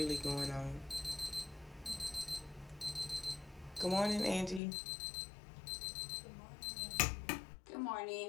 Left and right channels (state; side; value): drops out; right; at 4.6 s